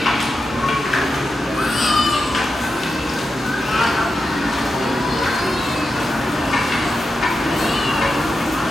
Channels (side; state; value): both; normal; correlation 0.89